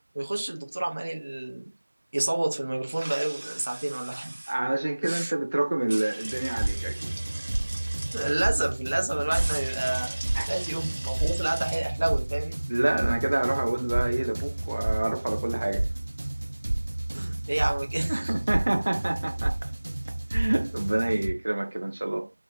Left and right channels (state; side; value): inverted; both; correlation -1.00